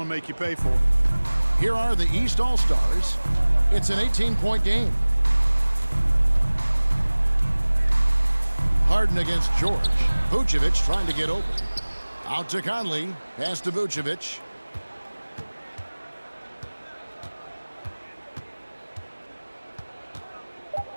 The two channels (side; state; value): both; inverted; correlation -1.00